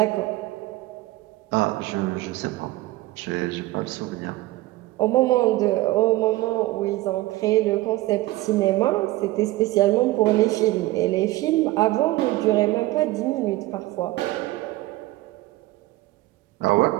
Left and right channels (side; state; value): left; quieter; 18.1 dB